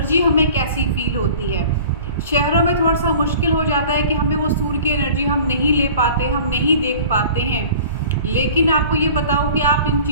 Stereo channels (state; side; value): inverted; both; correlation -0.44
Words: हमें कैसी फील होती है। शहरों में थोड़ा सा मुश्किल हो जाता है कि हमें वो सूर्य की एनर्जी हम नहीं ले पाते, हम नहीं देख पाते हैं। लेकिन आपको ये बताऊं कि आप इन